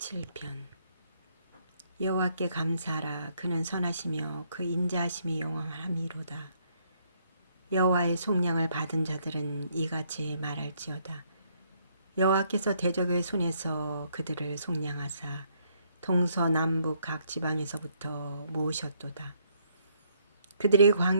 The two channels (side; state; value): both; inverted; correlation -0.70